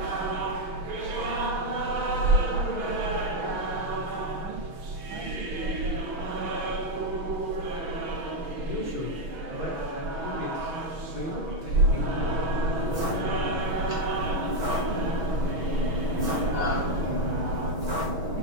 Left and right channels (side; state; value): left; late; 6.2 ms